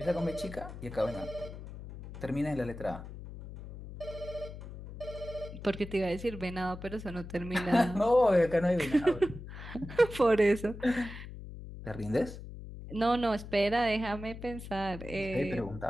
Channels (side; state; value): left; noise; hum, 12 dB below the sound